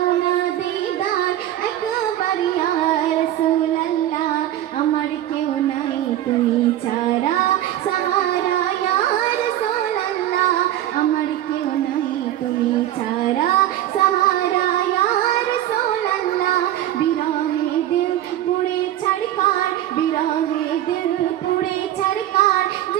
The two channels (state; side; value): quieter; left; 12.8 dB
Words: না দিদার একবার ইয়া রাসূলুল্লাহ। আমার কেউ নাই তুমি ছাড়া সাহারা ইয়া রাসূলুল্লাহ, আমার কেউ নাই তুমি ছাড়া সাহারা ইয়া রাসূলুল্লাহ। বিরহে দিল পুড়ে ছাড়কার, বিরহে দিল পুড়ে ছাড়কার